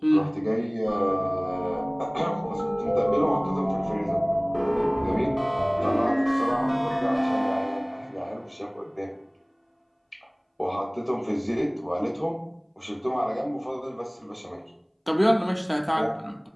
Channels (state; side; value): identical; both; correlation 1.00